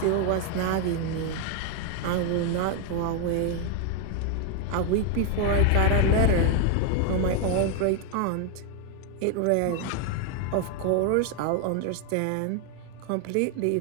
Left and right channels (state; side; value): different; both; correlation 0.00